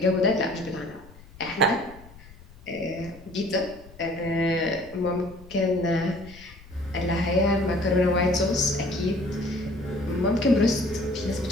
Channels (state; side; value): noise; left; rumble, 21 dB below the sound